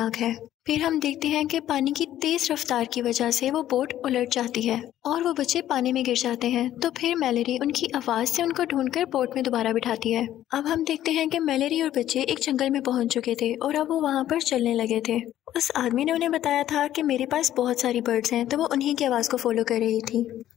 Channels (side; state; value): right; quieter; 12.4 dB